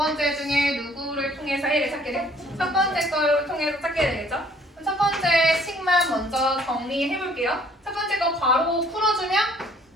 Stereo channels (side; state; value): both; normal; correlation 0.59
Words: 중에 누구를 통해서 해를 찾게 돼? 첫 번째 거를 통해서 찾게 되겠죠? 그럼 첫 번째 식만 먼저 정리해 볼게요. 첫 번째 거 괄호 풀어주면